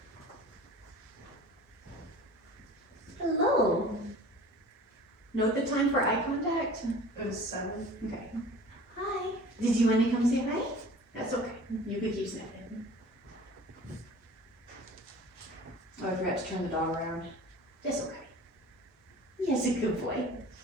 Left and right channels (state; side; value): normal; both; correlation 0.43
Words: Hello. Note the time for eye contact. It was 7. Okay. Hi. Did you want to come say hi? That's okay. You could keep sniffing. Oh, I forgot to turn the dog around. That's okay. Yes, a good boy.